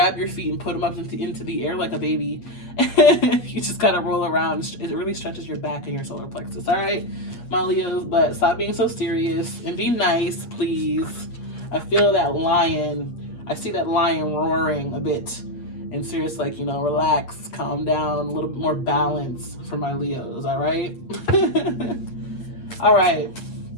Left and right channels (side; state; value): right; late; 8.5 ms